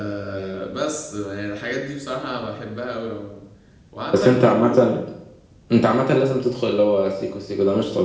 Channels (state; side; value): identical; both; correlation 1.00